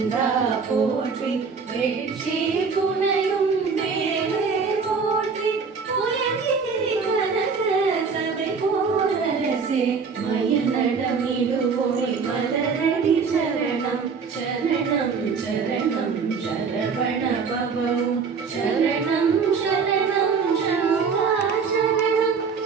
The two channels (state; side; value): quieter; left; 5.4 dB